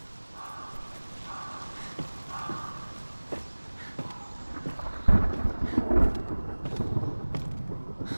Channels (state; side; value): inverted; both; correlation -1.00